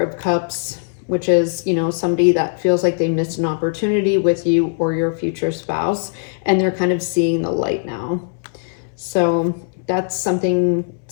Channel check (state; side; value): silent; right; 66 dB below the other